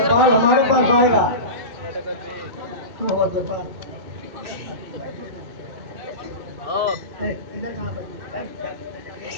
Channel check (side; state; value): left; late; 2.2 ms